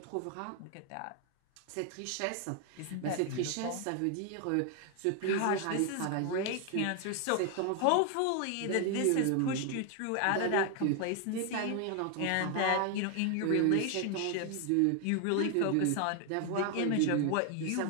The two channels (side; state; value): both; different; correlation 0.01